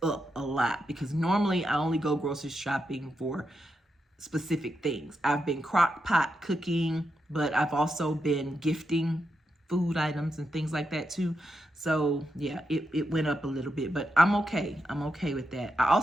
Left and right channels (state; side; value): normal; both; correlation 0.85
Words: up a lot, because normally I only go grocery shopping for specific things. I've been crock pot cooking, but I've also been gifting food items and things like that too. So yeah, it went up a little bit, but I'm okay. I'm okay with that. I